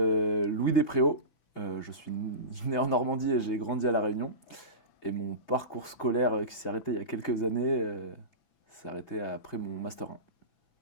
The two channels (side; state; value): right; late; 6.0 ms